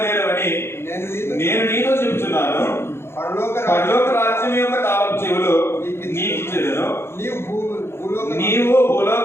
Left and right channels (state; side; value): late; right; 0.12 ms